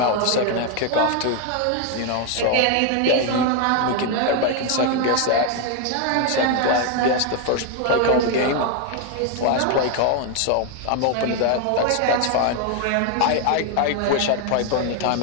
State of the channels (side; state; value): both; different; correlation 0.01